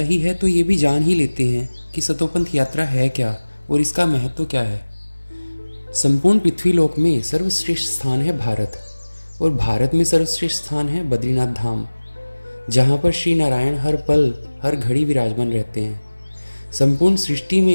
है तो ये भी जान ही लेते हैं कि सतोपंथ यात्रा है क्या और इसका महत्व क्या है। संपूर्ण पृथ्वीलोक में सर्वश्रेष्ठ स्थान है भारत, और भारत में सर्वश्रेष्ठ स्थान है बद्रीनाथ धाम, जहाँ पर श्री नारायण हर पल हर घड़ी विराजमान रहते हैं। संपूर्ण सृष्टि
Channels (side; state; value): both; inverted; correlation -1.00